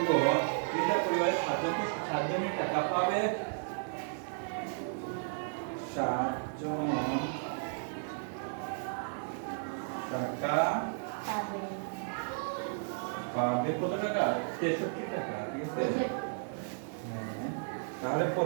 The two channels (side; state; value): left; silent; digital silence